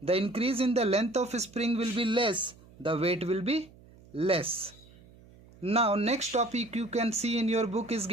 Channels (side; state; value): right; noise; hum, 24 dB below the sound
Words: the increase in the length of spring will be less, the weight will be less. Now next topic you can see in your book is